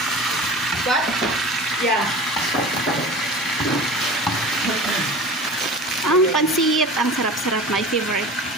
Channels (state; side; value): normal; both; correlation 0.37